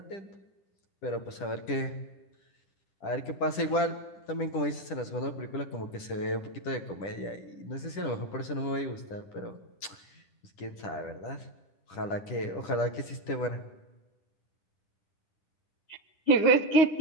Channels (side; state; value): right; late; 10 ms